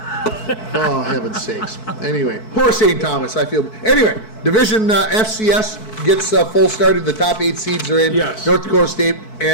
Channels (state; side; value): late; right; 4.6 ms